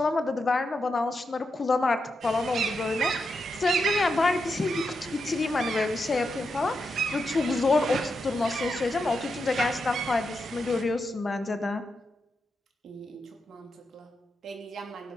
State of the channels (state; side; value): normal; both; correlation 0.86